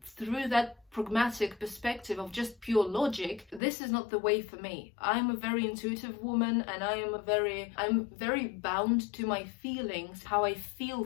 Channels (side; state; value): right; drops out; at 3.6 s